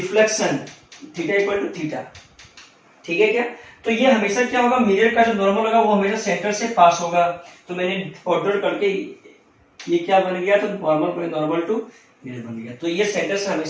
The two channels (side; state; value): both; identical; correlation 1.00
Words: theta equal to theta. ठीक है क्या, तो ये हमेशा क्या होगा, मिरर का जो नॉर्मल होगा वो हमेशा सेंटर से पास होगा। तो मैंने ऑर्डर करके ये क्या बन गया, तो नॉर्मल टू मिरर बन गया। तो ये सेंटर से